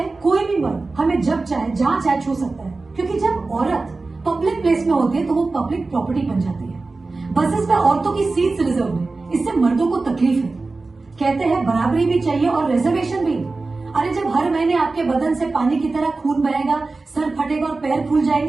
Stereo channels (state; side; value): quieter; left; 3.6 dB